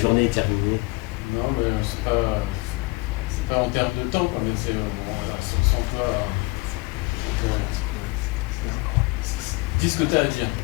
est terminée? Non, mais c'est pas en termes de temps, quand même. On sent pas. Dis ce que tu as à dire.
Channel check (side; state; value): right; quieter; 25.1 dB